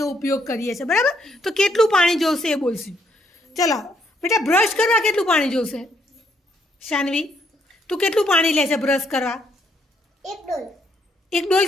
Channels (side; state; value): both; normal; correlation 0.72